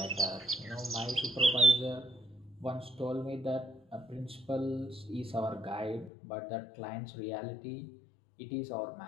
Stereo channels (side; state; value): right; drops out; at 6.1 s